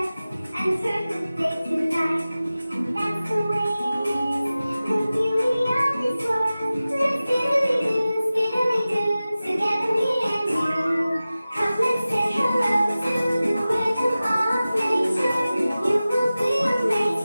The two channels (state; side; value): inverted; both; correlation -0.96